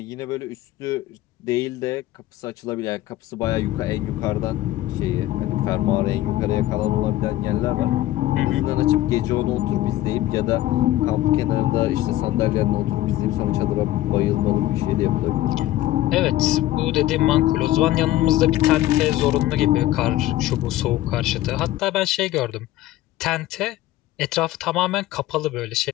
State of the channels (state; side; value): quieter; right; 15.0 dB